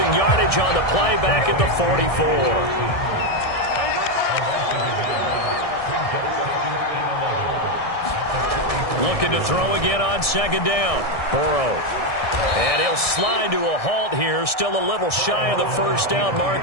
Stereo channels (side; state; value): right; late; 1.6 ms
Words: yardage on the play back at the 44. Looking to throw again on second down. Burrow. And he'll slide to a halt here. Still a little shy of the first down